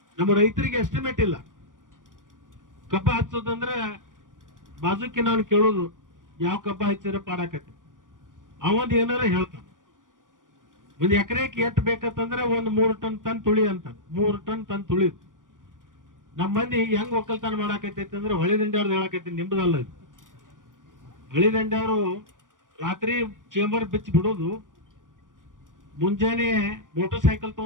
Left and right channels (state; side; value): late; left; 0.88 ms